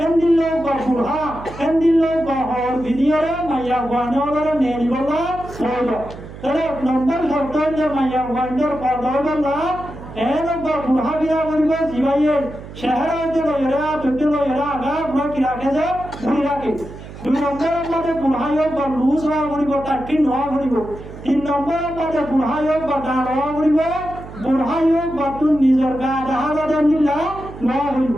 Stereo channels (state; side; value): noise; right; hum, 14 dB below the sound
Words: এন্দিলো বা বুড়া এন্দিলো বা হর ভিডিওরে মাইয়া গয়নরে নেনি বলা হইল তাহলে এক নম্বর শর্ত যে মাইয়া গয়নর পর্দা বলা এন বা বুড়া বিয়া করিব জিবাইয়ে শহর হইতে লইরা তুতে লইরা আগা বুড়া কি রাখে যে বুড়ি রাখে দুই নম্বরের মধ্যে বুড়াই হোক বা লুজ হওয়া করিব টাট্টি নোয়া করিব তিন নম্বরের মধ্যে বুড়াই হোক বা ডাল হওয়া করিব বুড়াই হোক বা তোর নিজের গা দেখা যাতে নিলা নোয়া করিব